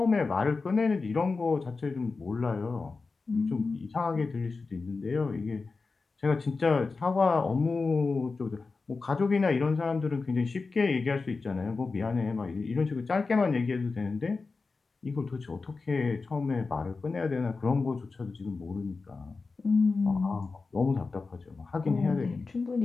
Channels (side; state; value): right; quieter; 4.2 dB